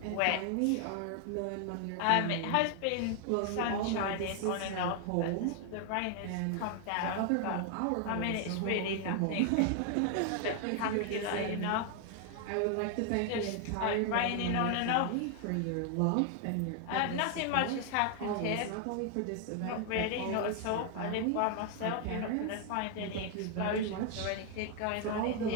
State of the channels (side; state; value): both; different; correlation 0.00